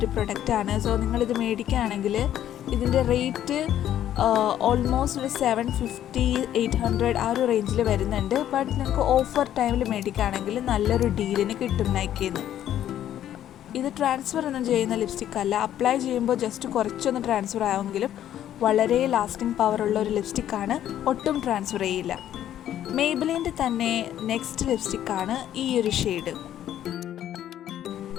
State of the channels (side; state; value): right; quieter; 11.3 dB